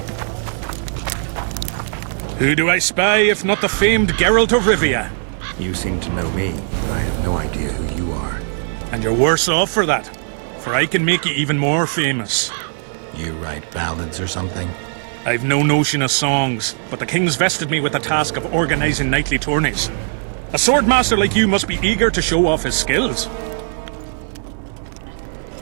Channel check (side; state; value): left; silent; digital silence